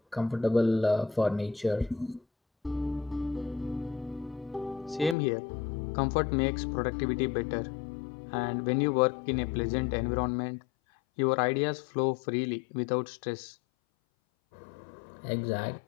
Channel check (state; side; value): drops out; right; at 5.2 s